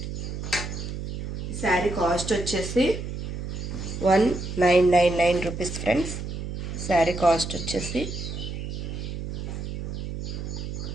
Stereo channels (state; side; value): noise; right; hum, 6 dB below the sound